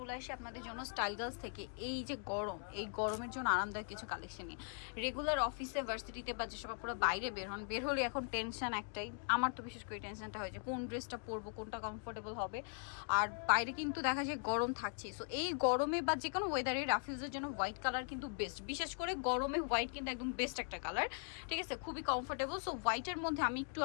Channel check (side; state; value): right; silent; 51 dB below the other